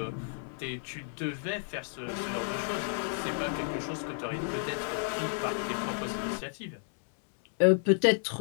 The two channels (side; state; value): right; silent; digital silence